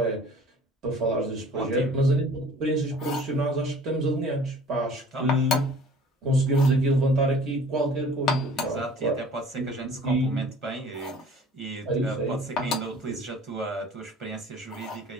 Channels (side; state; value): both; normal; correlation 0.49